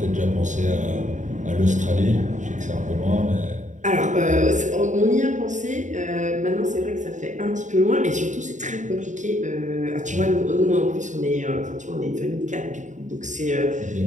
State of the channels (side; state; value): left; late; 0.36 ms